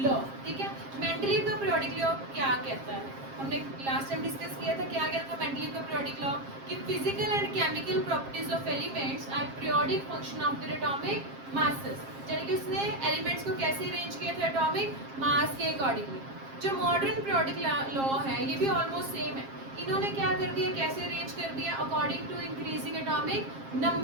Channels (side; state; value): left; late; 7.5 ms